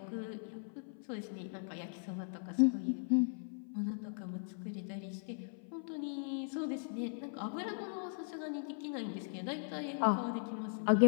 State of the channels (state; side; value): silent; right; 52 dB below the other